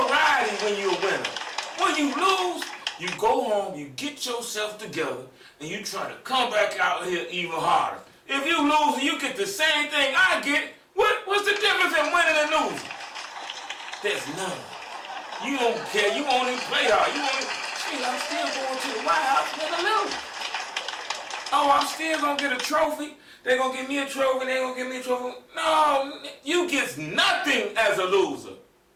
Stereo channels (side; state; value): both; identical; correlation 1.00